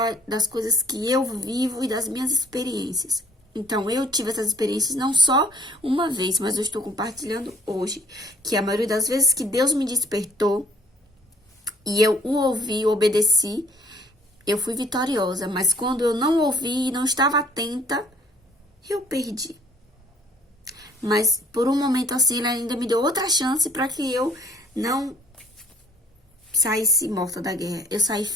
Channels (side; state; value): both; normal; correlation 0.59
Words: das coisas que eu vivo e das minhas experiências. Então, eu tive essas experiências não só uma vez, mas eu estou compartilhando hoje. Que a maioria das vezes que Deus me despertou e eu o ouvi, obedeci, eu fui vitoriosa. Mas quando eu não ouvi e não estava atenta, eu perdi. Mas por um momento assim, ele ainda me deu outra chance para que eu não saísse morta da guerra. Eu saí